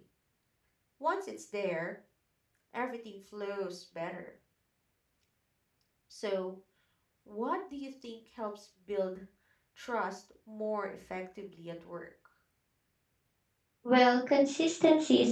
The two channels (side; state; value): both; identical; correlation 1.00